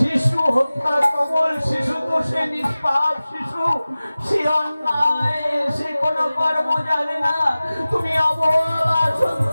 হত্যা, কমল শিশু তো সে নিষ্পাপ শিশু, সে অন্যায়, সে কোনো কর্ম জানে না। তুমি অবলা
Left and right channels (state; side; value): inverted; both; correlation -0.97